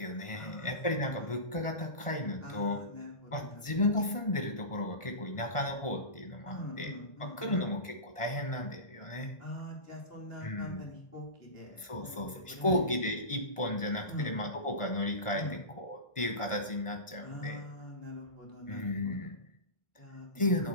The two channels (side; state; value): right; late; 1.5 ms